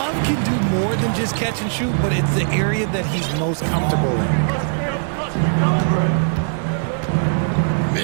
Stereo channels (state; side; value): silent; left; 59 dB below the other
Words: can do more than just catch and shoot, but it's the area that he's most comfortable in.